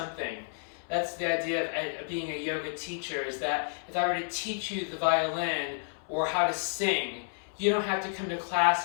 That's the idea of being a yoga teacher, is that if I were to teach you the violin or how to sing, you don't have to come to class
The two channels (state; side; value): silent; right; 57 dB below the other